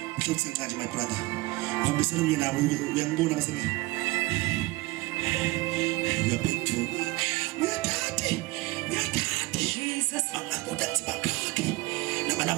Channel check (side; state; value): left; quieter; 21.6 dB